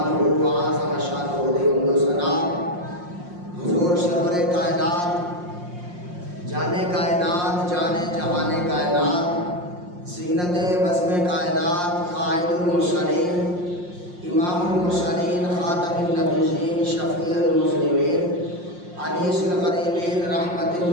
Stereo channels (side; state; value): left; late; 5.6 ms